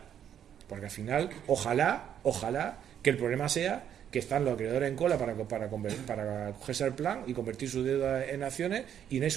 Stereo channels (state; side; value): quieter; left; 9.4 dB